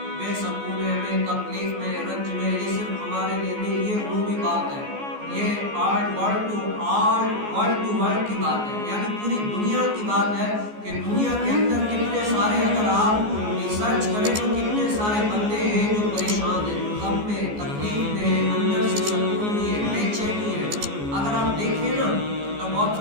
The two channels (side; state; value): left; late; 14 ms